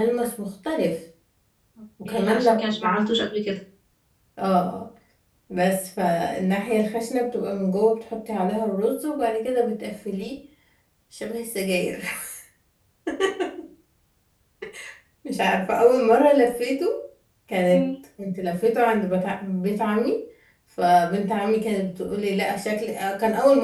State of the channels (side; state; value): both; identical; correlation 1.00